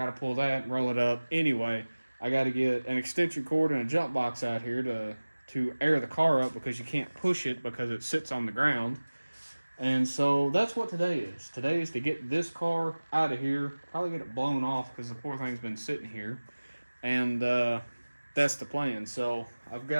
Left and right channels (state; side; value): inverted; both; correlation -1.00